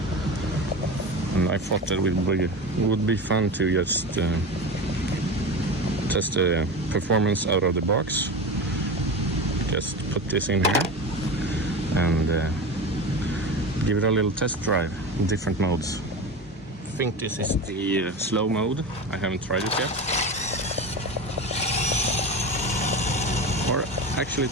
and I thought that it would be fun to just test the performance out of the box. Just put this in here and give it a little test drive in different modes. I think this is the slow mode. I haven't tried it yet. Or actually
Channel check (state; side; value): normal; both; correlation 0.26